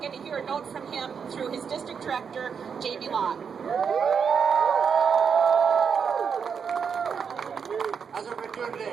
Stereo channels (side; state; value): left; quieter; 6.6 dB